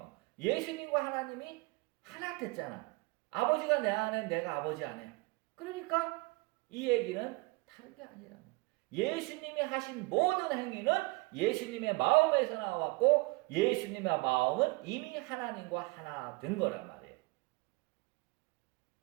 예수님과 하나님이 하나 됐잖아. 아버지가 내 안에 내가 아버지 안에. 그러니까 이 얘기는 다른 게 아니라 예수님이 하신 모든 행위는 예수님의 마음에서 나왔고 예수님의 마음은 이미 하나님과 하나 된 거란 말이에요.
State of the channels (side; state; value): left; quieter; 25.2 dB